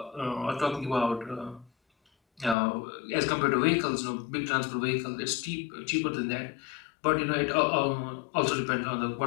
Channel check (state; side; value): drops out; right; at 2.6 s